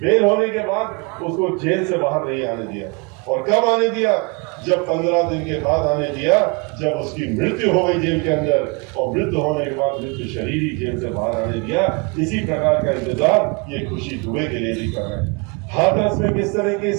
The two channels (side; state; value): left; quieter; 30.9 dB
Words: बेल होने के बाद उसको जेल से बाहर नहीं आने दिया। और कब आने दिया? जब 15 दिन के बाद आने दिया, जब उसकी मृत्यु हो गई जेल के अंदर, और मृत्यु होने के बाद मृत्यु शरीर ही जेल से बाहर आने दिया। इसी प्रकार का इंतजार ये खुशी दुबे के लिए भी कर रहे हैं। हाथरस में किस तरीके